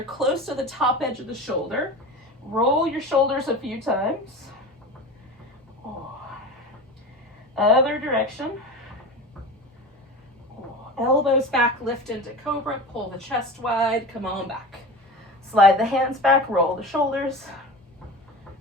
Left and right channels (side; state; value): both; normal; correlation 0.31